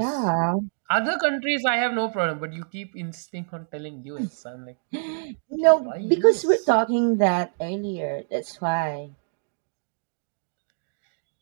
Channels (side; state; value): left; silent; digital silence